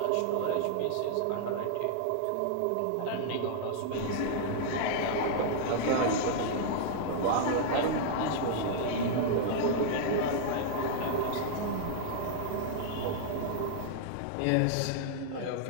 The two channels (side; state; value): both; different; correlation -0.01